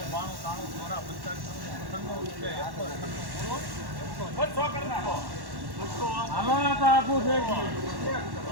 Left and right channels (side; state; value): left; late; 1.1 ms